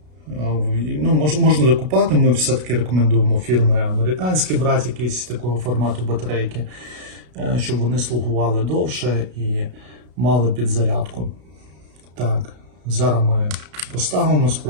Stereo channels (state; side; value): late; left; 33 ms